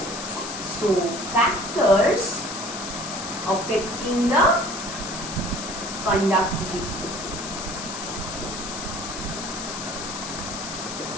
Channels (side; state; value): left; noise; hiss, 7 dB below the sound